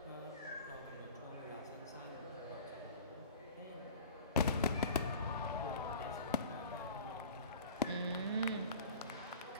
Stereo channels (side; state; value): both; inverted; correlation -0.42